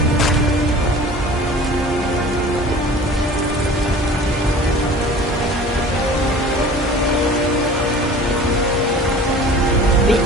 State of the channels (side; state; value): both; normal; correlation 0.43